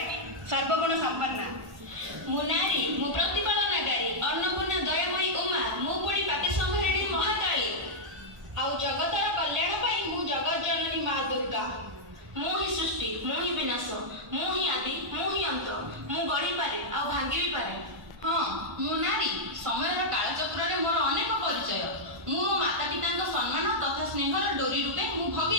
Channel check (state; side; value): late; left; 1.5 ms